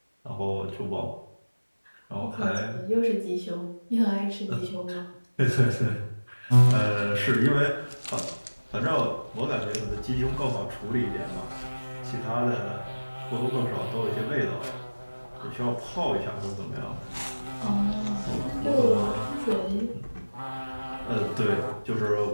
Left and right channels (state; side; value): inverted; both; correlation -1.00